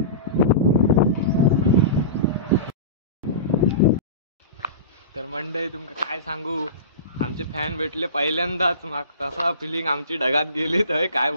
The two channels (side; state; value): both; inverted; correlation -0.30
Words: तर मंडळी तुमका काय सांगू, आमचे फॅन भेटले पहिल्यांदाच, मग तसा फिलिंग आमची ढगात गेली तर काय